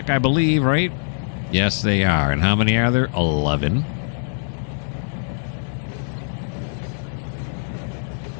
I believe, right? Yes, they are. And how many are there? 11.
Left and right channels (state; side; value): silent; right; 61 dB below the other